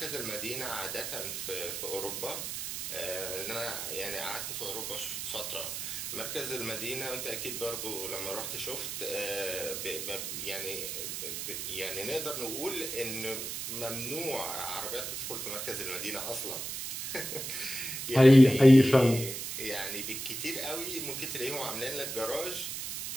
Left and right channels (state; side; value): noise; right; hiss, 5 dB below the sound